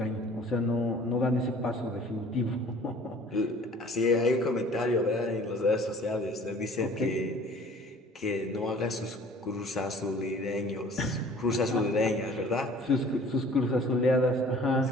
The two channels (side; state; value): both; normal; correlation 0.50